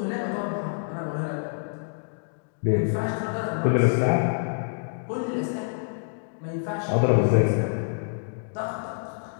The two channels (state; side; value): silent; right; digital silence